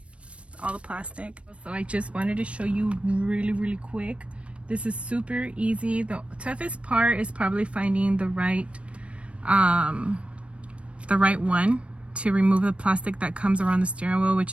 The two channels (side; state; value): left; late; 0.061 ms